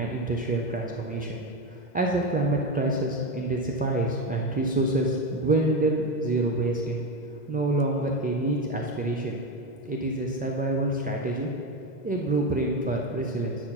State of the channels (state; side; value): late; right; 2.0 ms